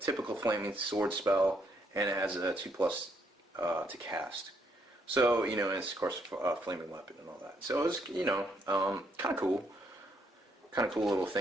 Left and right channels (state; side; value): normal; both; correlation 0.73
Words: Flaming Sword spell, and it has a 2+ to cast. So and it's of course a flaming weapon and all that. So it's kind of cool. Kind of cool little